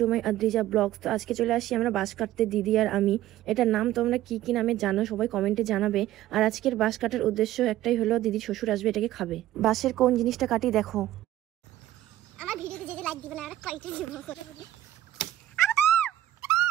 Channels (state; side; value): quieter; left; 13.9 dB